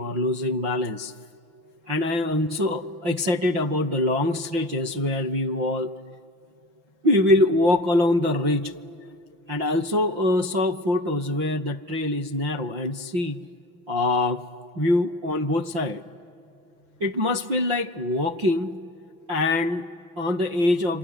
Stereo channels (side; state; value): left; late; 5.9 ms